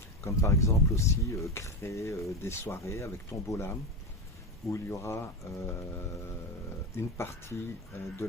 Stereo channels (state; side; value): normal; both; correlation 0.16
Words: Comme par exemple aussi créer des soirées avec Tombola, où il y aura une partie de